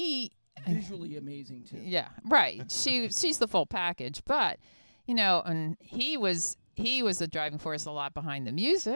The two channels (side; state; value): both; inverted; correlation -1.00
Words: Visually amazing, too. yeah, right. She's the full package, but and he was the driving force a lot behind the